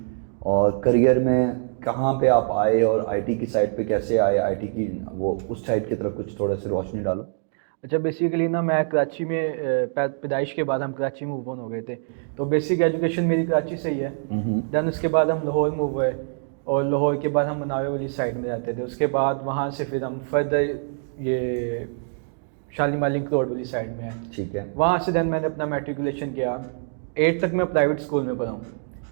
और करियर में कहाँ पे आप आए और आईटी की साइड पे कैसे आए, आईटी की वो उस साइड की तरफ कुछ थोड़ा सी रोशनी डालो। अच्छा बेसिकली ना मैं कराची में पैदाइश के बाद हम कराची मूव ऑन हो गए थे, तो बेसिक एजुकेशन मेरी कराची से ही है। देन उसके बाद हम लाहौर मूव हुए और लाहौर के बाद हम मनावे वाली साइड में रहते थे। उसके बाद वहाँ से फिर हम फर्दर ये शालीमार लिंक रोड वाली साइड में है, ठीक है। वहाँ से देन मैंने अपना मेट्रिकुलेशन किया। 8 तक मैं प्राइवेट स्कूल में पढ़ा हूँ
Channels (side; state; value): left; silent; digital silence